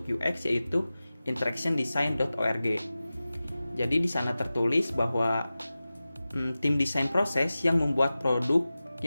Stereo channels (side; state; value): both; inverted; correlation -0.96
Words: UX yaitu interactiondesign.org. Jadi di sana tertulis bahwa tim desain proses yang membuat produk